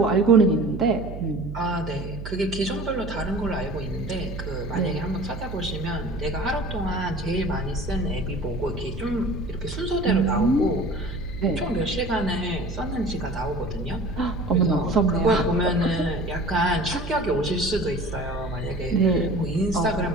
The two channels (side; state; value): right; noise; hum, 9 dB below the sound